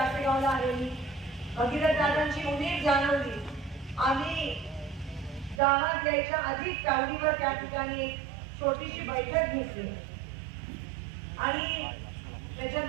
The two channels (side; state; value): left; drops out; at 5.6 s